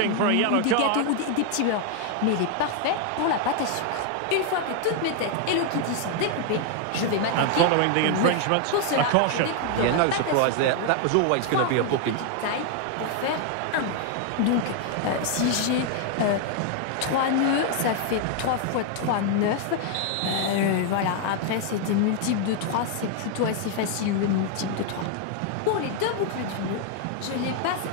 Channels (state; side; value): different; both; correlation 0.00